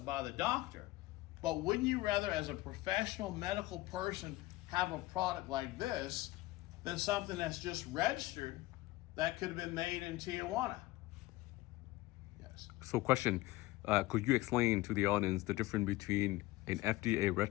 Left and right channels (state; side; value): quieter; right; 18.8 dB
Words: by the doctor, but wouldn't you rather, as a professional medical person, have a product like this than something that's just registered that could have been made in Tijuana? Yes. So question, could you explain to the audience the difference between An FDA